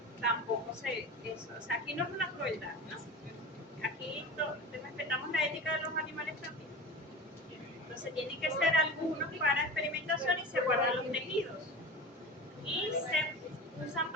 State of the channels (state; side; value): normal; both; correlation 0.31